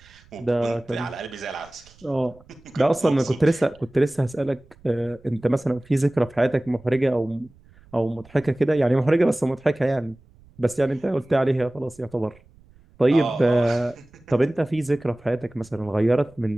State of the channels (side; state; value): right; noise; rumble, 28 dB below the sound